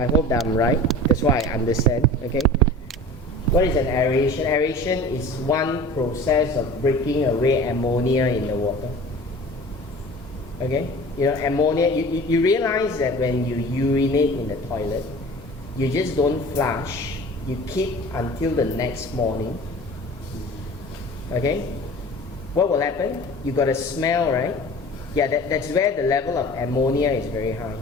hope that I'm right. That's why I understand. Okay. What is an aeration? Aeration is one process of breaking away ammonia in the water. Okay. You know, ammonia. You realize that when you urinate in the toilet, you just don't flush. You keep until the next morning. Okay? What will happen? You got a smell, right? Yeah, that's where the level of ammonia is very high.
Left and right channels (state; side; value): normal; both; correlation 0.41